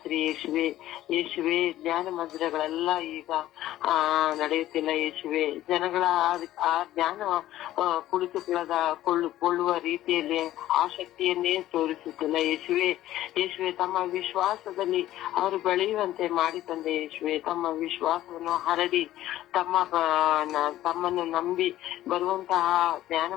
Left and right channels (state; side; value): quieter; right; 14.1 dB